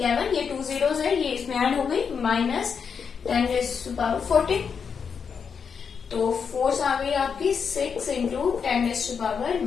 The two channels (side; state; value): right; quieter; 6.4 dB